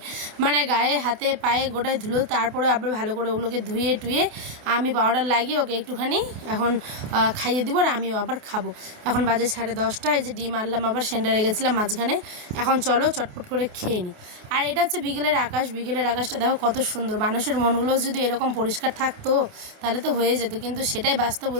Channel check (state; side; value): late; left; 28 ms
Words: মানে গায়ে হাতে পায়ে গোটায় ধুলো, তারপরে আবার ভালো করে ওগুলোকে ধুয়ে টুয়ে আমি পাউডার লাগিয়ে ওকে একটুখানি এখন খাইয়ে দিব, আর আমিও আবার খাবো। এখন বাজে 10:30, এই যে ডিম আনলাম, আবার সেন্টারে গেছিলাম মাঝখানে। এখন চলো চটপট করে খেয়ে নিই। আর এটা হচ্ছে বিকেলের আকাশ, বিকেলের আকাশটা দেখো কত সুন্দর। মানুষের মনগুলোও যদি এরকম পরিষ্কার থাকতো তাহলে তো হয়ে যেত, কিন্তু সেটাই বাস্তব